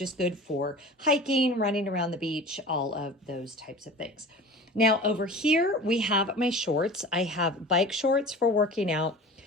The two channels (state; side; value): normal; both; correlation 0.38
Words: good for hiking, running around the beach, all of those types of things. Now over here, we have my shorts. I have bike shorts for working out,